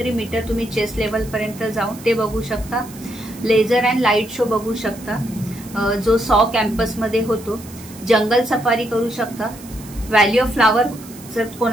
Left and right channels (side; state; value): right; noise; hiss, 19 dB below the sound